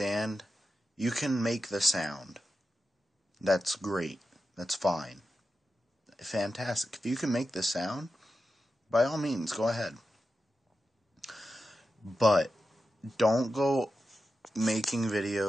You can make the sound. That's great. That's fine. Fantastic. If you can make the sound, by all means, go ahead. But don't go making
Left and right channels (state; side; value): normal; both; correlation 0.91